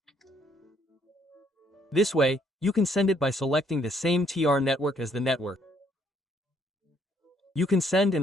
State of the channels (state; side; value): normal; both; correlation 0.68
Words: This way, you can send it by selecting the same TR network as the network. You can send